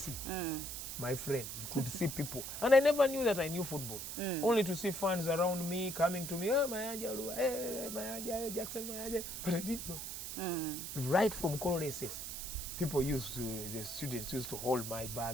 my friend, you could see people. And I never knew that I knew football. Only to see fans around me coming to me, oh, Mayanja, hey, Mayanja, Jackson, Mayanja. But I didn't know. Right from Coloreses, the students used to hold my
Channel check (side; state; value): right; noise; hiss, 6 dB below the sound